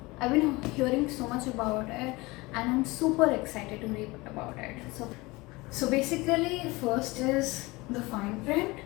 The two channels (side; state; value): right; quieter; 22.7 dB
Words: I've been hearing so much about it, and I'm super excited to read about it. So basically, first is the fine print,